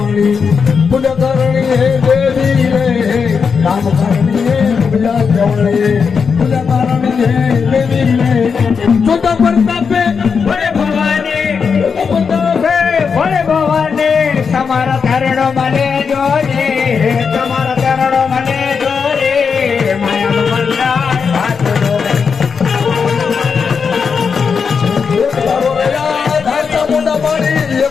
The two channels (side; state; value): right; quieter; 5.9 dB